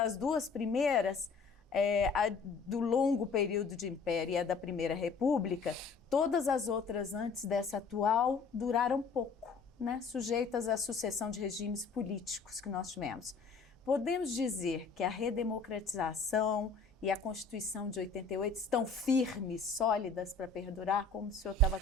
2 primeiras, a do longo período de império e a da Primeira República, todas as outras antes dessa atual duraram pouco, né, sujeitas à sucessão de regimes políticos que nós tivemos. Podemos dizer que a redemocratização e a Constituição de 88 estão firmes, sólidas para perdurar, como o senhor estava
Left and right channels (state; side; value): quieter; right; 4.5 dB